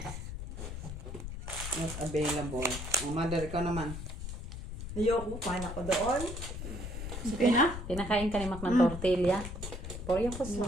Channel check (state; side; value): noise; left; rumble, 7 dB below the sound